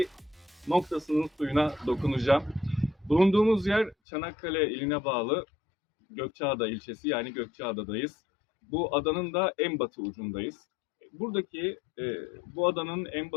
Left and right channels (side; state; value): right; drops out; at 4.0 s